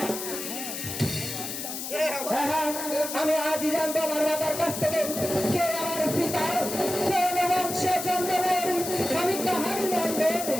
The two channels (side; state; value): left; noise; hiss, 6 dB below the sound